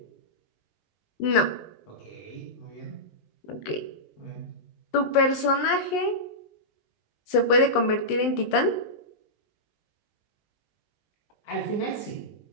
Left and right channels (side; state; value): right; late; 19 ms